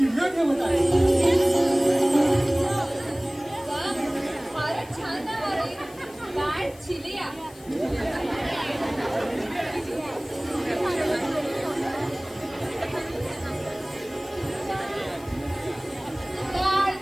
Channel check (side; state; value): left; noise; hiss, 23 dB below the sound